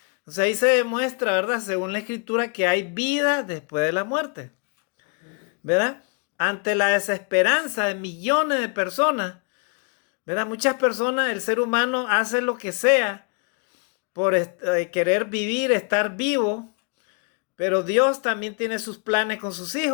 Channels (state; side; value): quieter; right; 39.2 dB